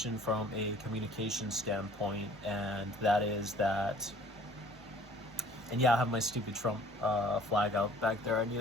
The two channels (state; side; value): normal; both; correlation 0.52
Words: from a communication standpoint, and that is that. And yeah, I have my stupid Trump flag out back there. I need